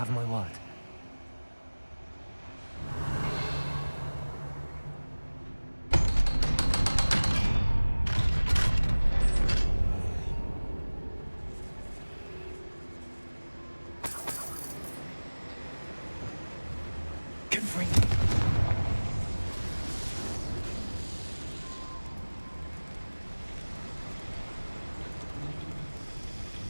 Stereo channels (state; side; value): inverted; both; correlation -1.00